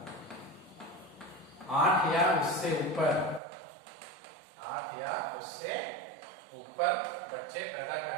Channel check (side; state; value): left; drops out; at 3.4 s